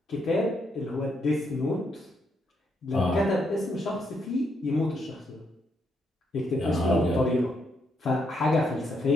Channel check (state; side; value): normal; both; correlation 0.77